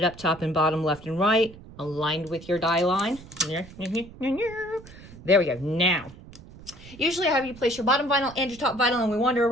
up top and bottom, left and right, aligned with your die line. There we go. Now, usually I have you place your bottom vinyl and your top vinyl and we wander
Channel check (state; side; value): noise; right; rumble, 19 dB below the sound